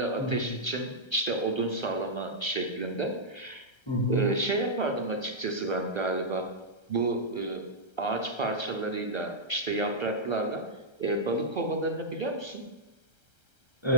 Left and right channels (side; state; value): right; late; 1.3 ms